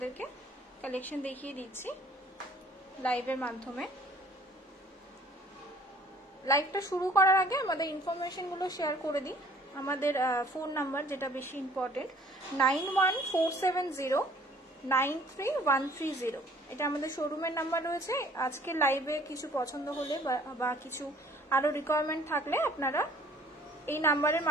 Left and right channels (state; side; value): normal; both; correlation 0.55